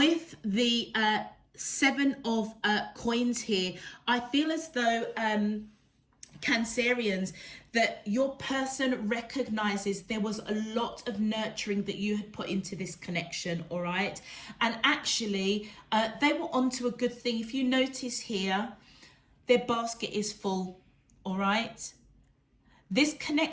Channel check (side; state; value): both; identical; correlation 1.00